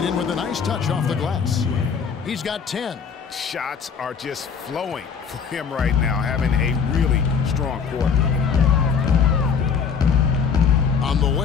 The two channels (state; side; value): quieter; right; 6.5 dB